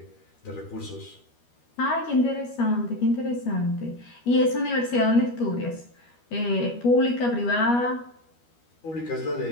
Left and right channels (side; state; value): right; late; 12 ms